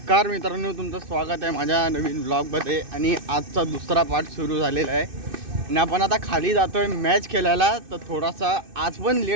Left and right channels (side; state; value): left; late; 2.6 ms